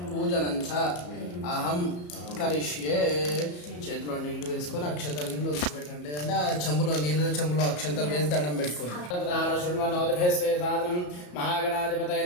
పూజనంచ అహం కరిష్యే. చేతిలో నీళ్లు వేసుకొని అక్షంతలు నీళ్ళు వదిలిపెట్టండి. అంటే ఆ చెంబులో చెంబులో అక్షంతలు వేసి దండం పెట్టుకోండి. సాధనం మహాగణాధిపతయ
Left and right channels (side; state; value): right; late; 34 ms